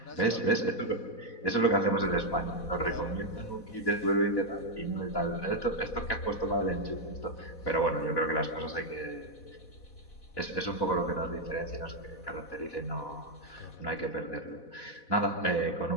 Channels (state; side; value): late; right; 4.1 ms